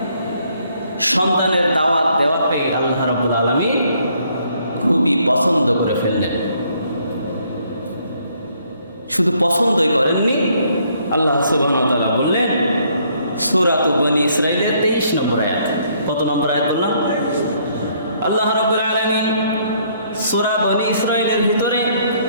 সন্তানের দাওয়াত দেওয়াকে আল্লাহ রাব্বুল আলামিন খুবই পছন্দ করে ফেললেন। শুধু পছন্দই করেননি, আল্লাহ সুবহানাহু ওয়া তাআলা বললেন সূরা বনী ইসরাঈলের 23 নম্বর আয়াত। কত নম্বর আয়াত বললাম? আল্লাহ রাব্বুল আলামিন সূরা বনী ইসরাঈলের ভিতরে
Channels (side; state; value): both; inverted; correlation -0.67